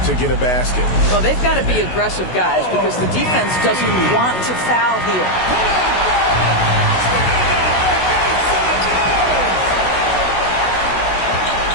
to get a basket. Well, they've got to be aggressive, guys, because the defense doesn't want to foul here.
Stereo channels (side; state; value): right; late; 16 ms